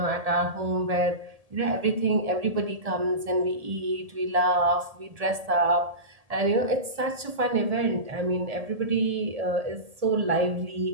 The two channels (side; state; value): left; late; 1.8 ms